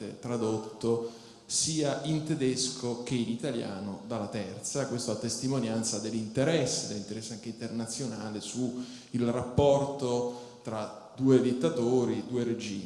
tradotto sia in tedesco che in italiano dalla Terza, questo a testimonianza dell'interesse anche internazionale su il rapporto tra due dittatori, due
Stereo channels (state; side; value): identical; both; correlation 1.00